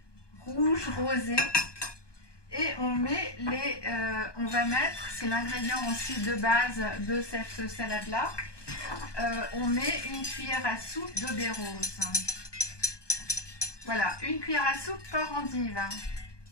rouge, rosé. Et on met on va mettre, c'est l'ingrédient aussi de base de cette salade-là. On met une cuillère à soupe de baies roses. Voilà, une cuillère à soupe par endive.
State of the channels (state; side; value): late; right; 1.2 ms